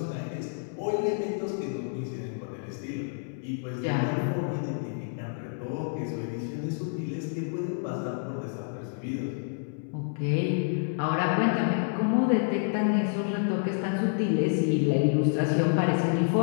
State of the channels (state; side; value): silent; right; digital silence